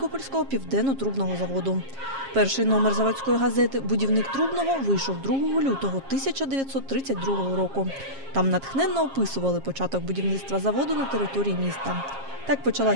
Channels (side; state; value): left; late; 7.4 ms